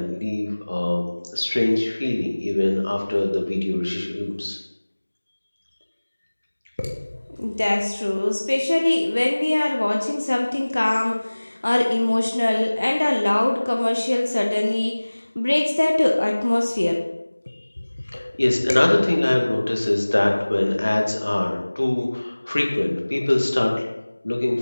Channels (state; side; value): inverted; both; correlation -1.00